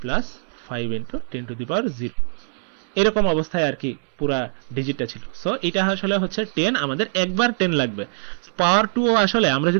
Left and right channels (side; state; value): left; silent; 63 dB below the other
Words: plus 5 into 10 to the power 0, এরকম অবস্থায় আর কি পুরা ডিজিটটা ছিল। সো এটা আসলে হচ্ছে 10, আমাদের একবার 10 লাগবে। পাওয়ার 2 আসলে আমরা